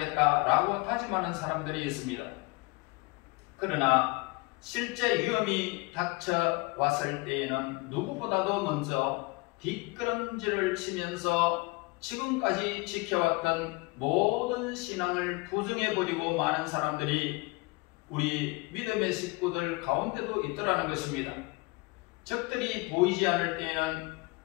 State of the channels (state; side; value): quieter; right; 25.3 dB